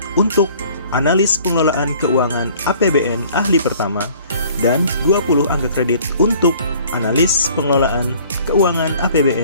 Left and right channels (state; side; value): inverted; both; correlation -0.53